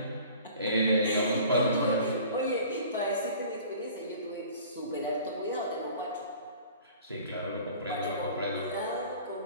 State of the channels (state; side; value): inverted; both; correlation -0.46